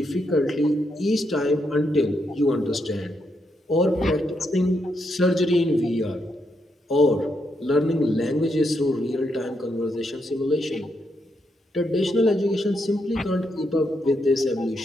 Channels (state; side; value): normal; both; correlation 0.80